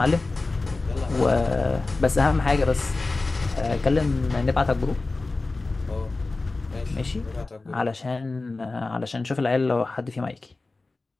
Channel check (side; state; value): right; quieter; 3.4 dB